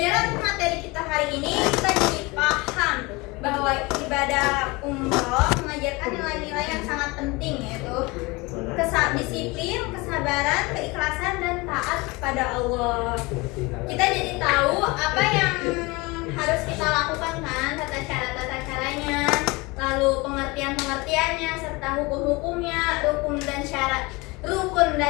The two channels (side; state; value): right; quieter; 24.6 dB